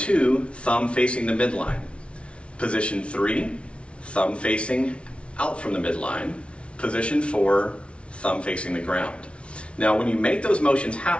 thumb facing the midline. Position 3, thumb facing out from the midline. Position 4, thumb facing the ground. Now when you make those motions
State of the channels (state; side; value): late; right; 0.060 ms